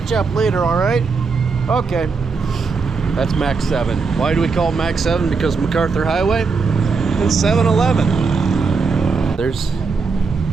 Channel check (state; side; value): quieter; left; 4.8 dB